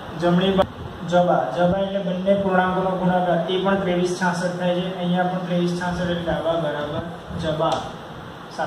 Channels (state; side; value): identical; both; correlation 1.00